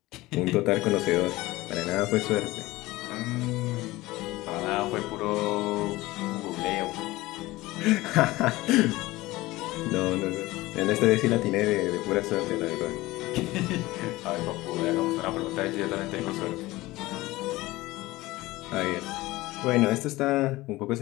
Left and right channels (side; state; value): right; quieter; 19.1 dB